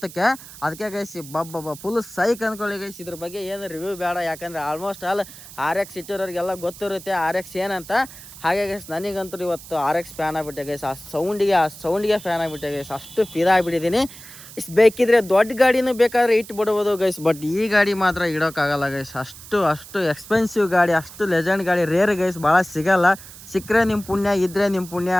ಅದಕ್ಕೆ ಗೈಸ್ ಫುಲ್ ಸೈಕ್ ಅಂದ್ಕೊಳ್ಳಿ ಗೈಸ್. ಇದ್ರ ಬಗ್ಗೆ ಏನು ರಿವ್ಯೂ ಬೇಡ, ಯಾಕಂದರೆ ಆಲ್ಮೋಸ್ಟ್ ಆಲ್ RX ಇಟ್ಟಿರೋರಿಗೆಲ್ಲ ಗೊತ್ತಿರುತ್ತೆ RX ಏನಂತ. ಹಾಗೆ ಗೈಸ್ ನನಗಂತೂ ಇವತ್ತು RX ಫ್ಯಾನ್ ಆಗಿಬಿಟ್ಟೆ ಗೈಸ್. ಆ ಸೌಂಡಿಗೆ ಫ್ಯಾನ್ ಆಗಿಬಿಟ್ಟೆ ಗೈಸ್, ಅಷ್ಟು ಫಿದಾಗ್ಬಿಟ್ಟಿದ್ದೀನಿ. ಬೇಕಿದ್ರೆ ದೊಡ್ಡ ಗಾಡಿನೂ ಬೇಕಾದ್ರೆ ಇಟ್ಬಿಡ್ಬೋದು ಗೈಸ್, ಬಟ್ ಈ ಗಾಡಿ ಮಾತ್ರ ಇಡೋಕ್ಕಾಗಲ್ಲ ಗೈಸ್. ಅಷ್ಟು ಎಕ್ಸ್ಪೆನ್ಸಿವ್ ಗಾಡಿ, ಅಷ್ಟು ಲೆಜೆಂಡ್ ಗಾಡಿ ರೇರ್ ಗೈಸ್, ಭಾಳ ಸಿಗಲ್ಲ. ಸಿಕ್ಕರೆ ನಿಮ್ಮ ಪುಣ್ಯ, ಇದ್ದರೆ ನಿಮ್ಮ ಪುಣ್ಯ.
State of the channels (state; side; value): noise; right; hiss, 17 dB below the sound